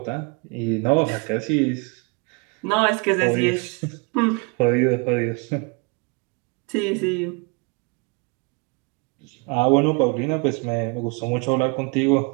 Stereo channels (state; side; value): quieter; left; 31.4 dB